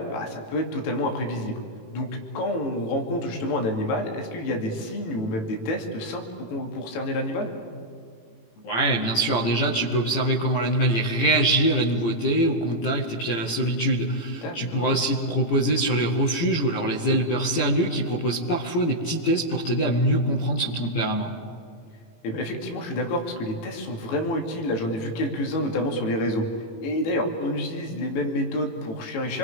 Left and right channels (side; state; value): right; late; 18 ms